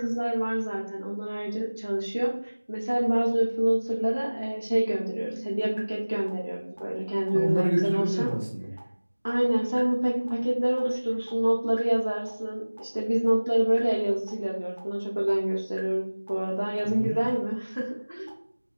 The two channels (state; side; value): inverted; both; correlation -1.00